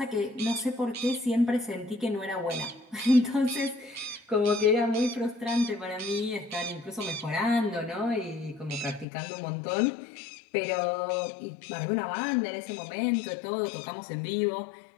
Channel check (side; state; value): right; drops out; at 9.1 s